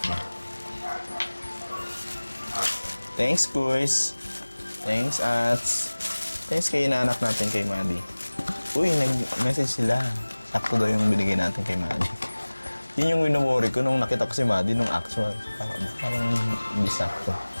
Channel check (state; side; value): inverted; both; correlation -1.00